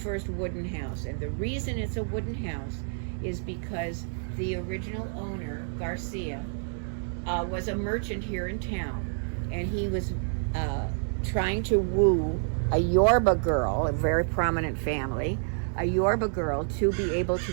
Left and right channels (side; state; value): left; silent; 59 dB below the other